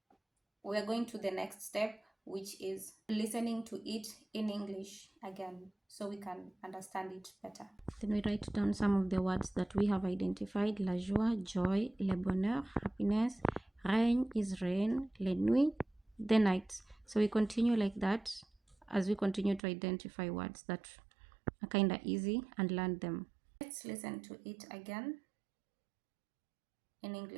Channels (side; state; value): left; drops out; at 19.6 s